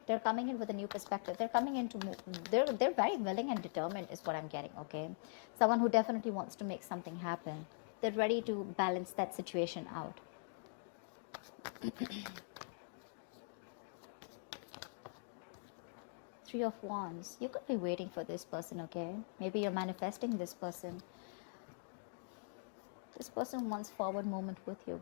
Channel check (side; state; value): right; silent; digital silence